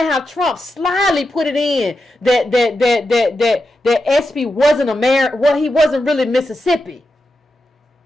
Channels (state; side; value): normal; both; correlation 0.88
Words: how Trump slyly put it in that SB wasn't America. Well, he wasn't really Mississippi.